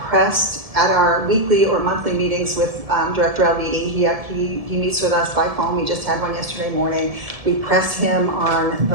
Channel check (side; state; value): left; late; 1.7 ms